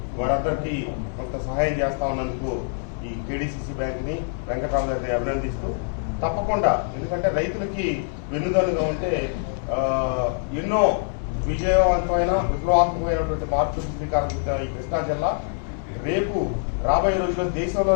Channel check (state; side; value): silent; right; digital silence